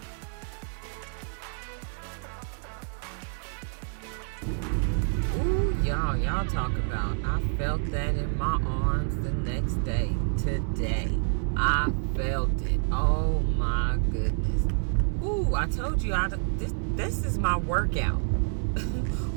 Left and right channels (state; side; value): silent; left; 59 dB below the other